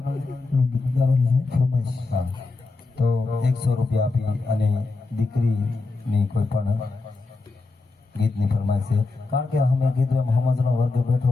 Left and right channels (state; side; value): quieter; right; 3.6 dB